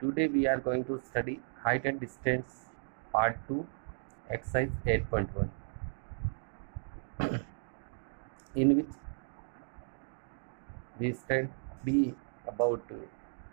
we are going to study height and distance part 2, exercise 8.1, in which we study about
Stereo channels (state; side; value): silent; left; digital silence